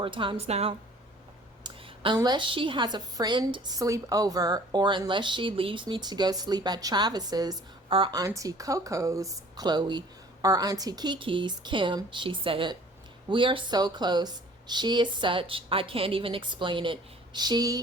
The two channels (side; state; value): both; normal; correlation 0.51